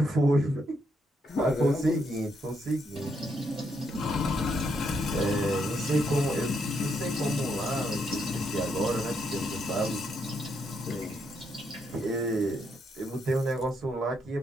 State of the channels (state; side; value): normal; both; correlation 0.77